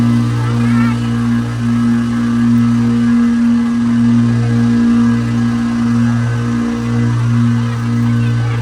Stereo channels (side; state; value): both; identical; correlation 1.00